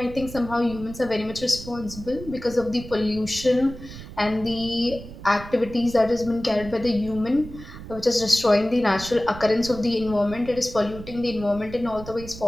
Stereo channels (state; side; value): noise; right; rumble, 13 dB below the sound